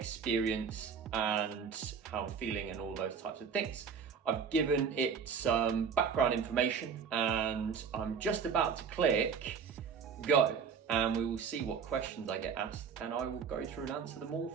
and how I'm feeling and all those types of things. I've given it some background information and I'm just about to click go, and we will see what questions I get asked and I will go through and answer them all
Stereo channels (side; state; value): left; quieter; 6.5 dB